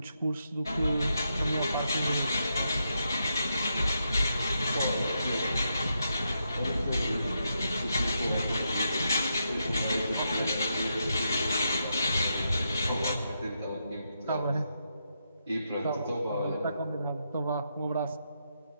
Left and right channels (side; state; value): both; inverted; correlation -0.83